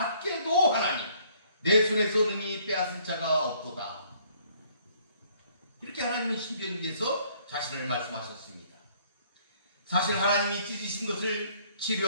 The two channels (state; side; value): inverted; both; correlation -0.62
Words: 하나니 내 손에서 능히 빼앗을 자가 없도다. 이렇게 하나님은 신명기에서 자신을 말씀하셨습니다. 사실 하나님이 찢으신 것을